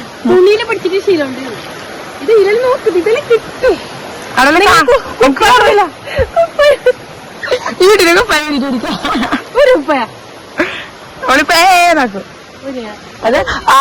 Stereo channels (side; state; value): both; identical; correlation 1.00